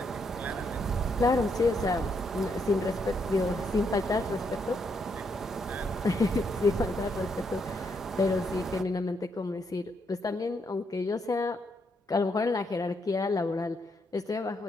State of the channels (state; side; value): normal; both; correlation 0.76